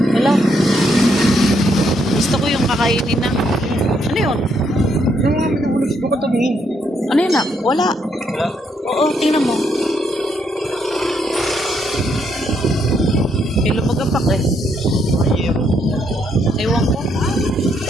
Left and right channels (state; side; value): normal; both; correlation 0.74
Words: Hilaw. Gusto ko yung kakainin na. Ano yun? Yung mga minabulog ko katabi. Ano yun na? Wala. Wala? Oo, tingnan mo. May lumagapak eh. Ewan ko.